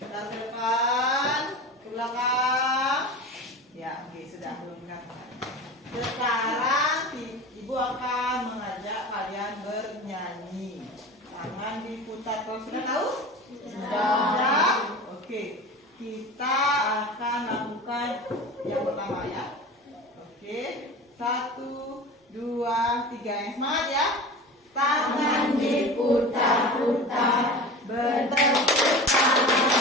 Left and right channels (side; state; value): both; normal; correlation 0.33